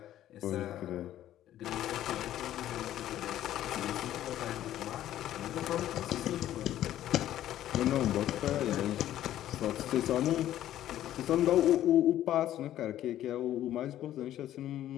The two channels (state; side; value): quieter; right; 12.6 dB